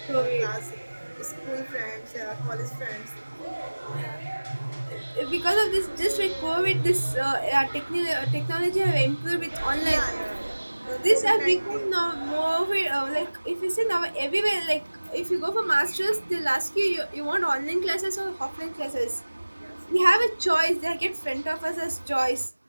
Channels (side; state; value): both; inverted; correlation -1.00